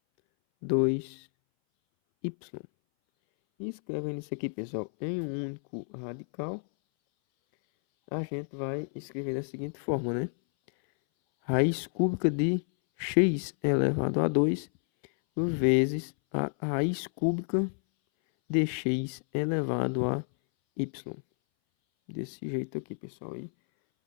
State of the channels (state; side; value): silent; right; 58 dB below the other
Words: 2y. E escrevendo isso aqui, pessoal, em um único radical, a gente vai escrever da seguinte forma, né? Raiz cúbica de x elevado a 2 vezes a raiz cúbica de x elevado a y. Desse jeito aqui, pessoal. E